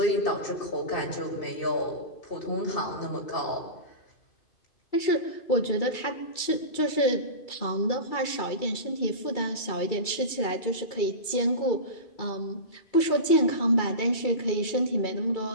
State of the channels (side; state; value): right; late; 2.3 ms